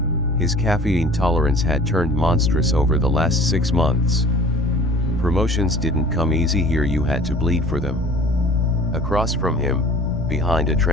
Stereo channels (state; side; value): normal; both; correlation 0.46